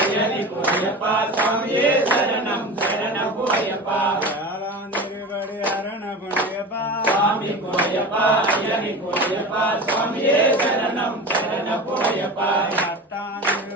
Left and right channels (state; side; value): normal; both; correlation 0.31